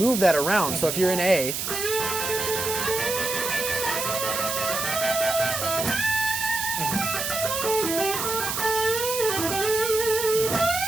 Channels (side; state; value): right; noise; hiss, 2 dB below the sound